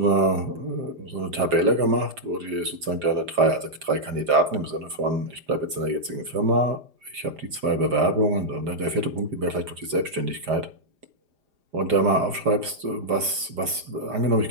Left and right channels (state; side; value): late; left; 4.9 ms